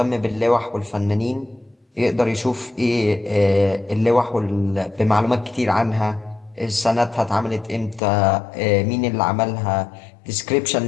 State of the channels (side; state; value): right; drops out; at 8.0 s